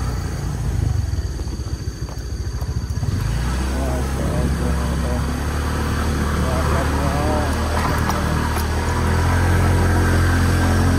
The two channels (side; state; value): both; identical; correlation 1.00